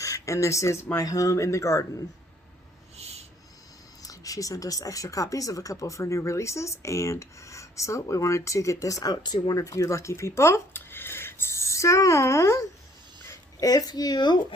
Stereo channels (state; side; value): normal; both; correlation 0.62